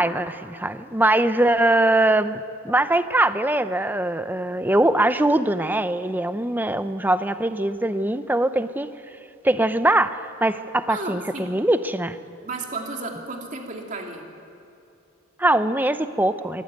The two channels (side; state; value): both; normal; correlation 0.77